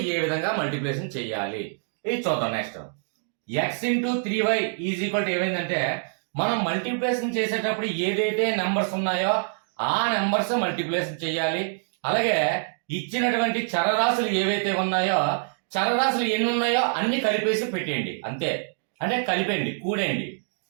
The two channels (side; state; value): left; silent; digital silence